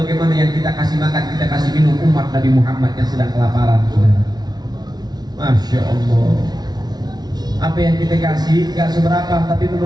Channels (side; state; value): left; late; 0.19 ms